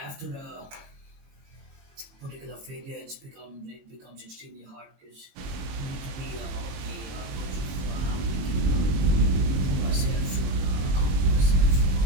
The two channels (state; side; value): late; left; 23 ms